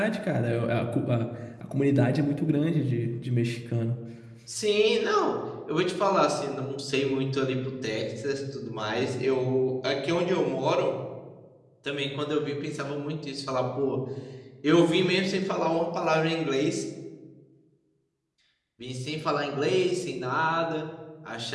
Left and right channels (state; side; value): identical; both; correlation 1.00